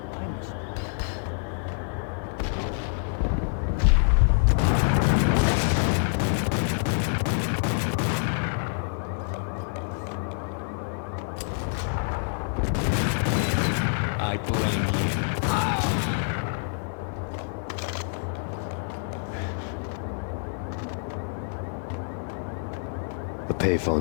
I must do the right thing. I blame you. The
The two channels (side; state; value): right; silent; 55 dB below the other